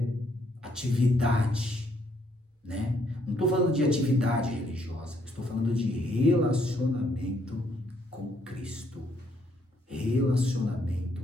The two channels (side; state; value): both; normal; correlation 0.71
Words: atividade, né? Não estou falando de atividade religiosa. Estou falando de relacionamento com Cristo. Relacionamento